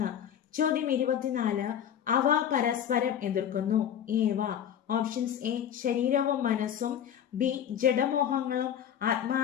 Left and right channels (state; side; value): quieter; right; 9.4 dB